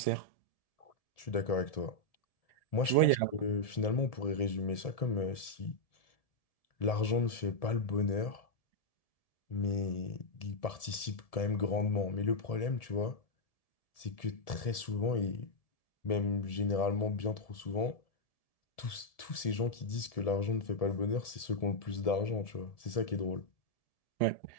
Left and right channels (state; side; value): late; right; 1.7 ms